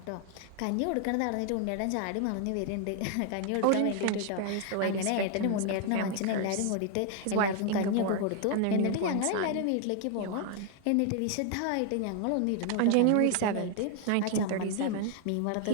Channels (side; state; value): both; different; correlation 0.00